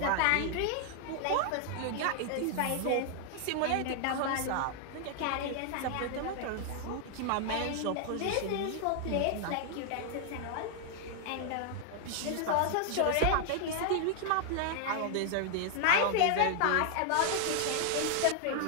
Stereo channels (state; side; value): different; both; correlation 0.00